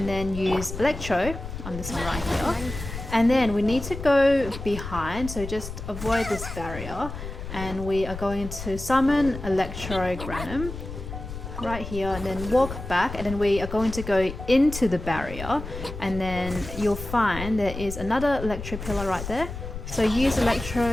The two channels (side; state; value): left; noise; rumble, 9 dB below the sound